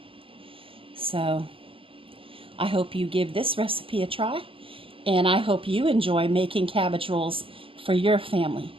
So I hope you give this recipe a try. And I hope you enjoy making cabbage rolls for your family.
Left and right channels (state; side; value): late; left; 0.26 ms